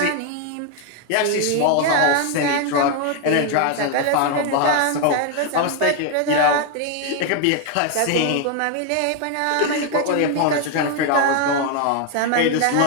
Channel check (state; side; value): different; both; correlation 0.01